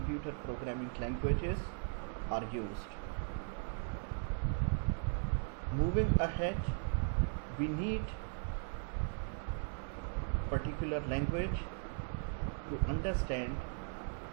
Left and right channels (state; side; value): silent; left; 52 dB below the other